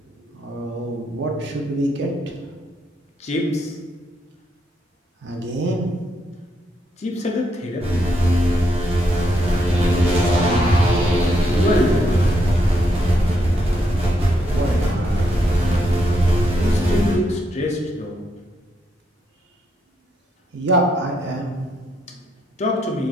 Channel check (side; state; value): both; normal; correlation 0.78